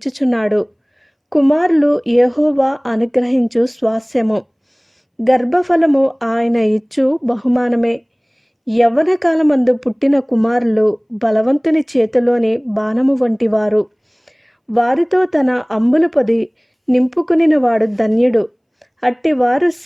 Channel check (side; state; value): both; identical; correlation 1.00